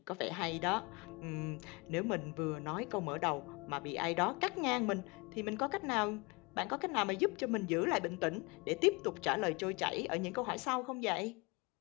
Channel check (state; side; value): quieter; right; 28.1 dB